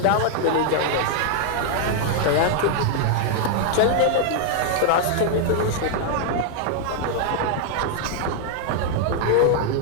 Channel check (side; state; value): both; different; correlation 0.00